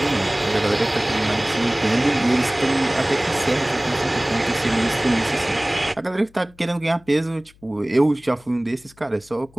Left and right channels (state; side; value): noise; left; hum, 28 dB below the sound